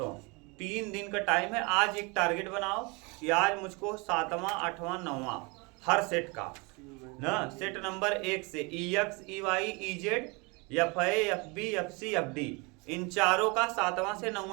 3 दिन का टाइम है। आज एक टारगेट बनाओ कि आज मुझको 7वां 8वां 9वां हर सेट का ना, सेट नंबर 1 से EX EY EZ FA FB FC FD इन चारों का 7वां से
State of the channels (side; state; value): left; quieter; 28.8 dB